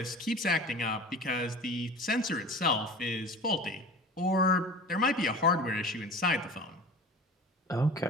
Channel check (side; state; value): both; normal; correlation 0.37